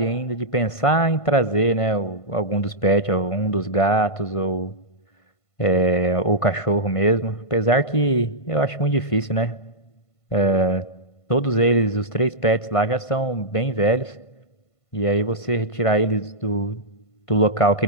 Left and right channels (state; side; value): late; right; 1.5 ms